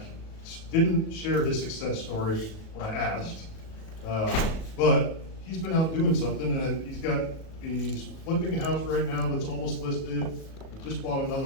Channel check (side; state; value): right; late; 37 ms